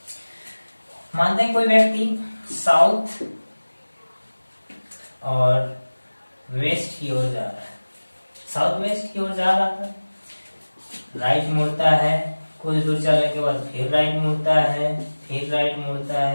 मानते हैं कोई व्यक्ति साउथ और वेस्ट की ओर जा रहा है, साउथ वेस्ट की ओर जा रहा था, राइट मुड़ता है, कुछ दूर चलने के बाद फिर राइट मुड़ता है, फिर राइट मुड़ता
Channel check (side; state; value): both; inverted; correlation -1.00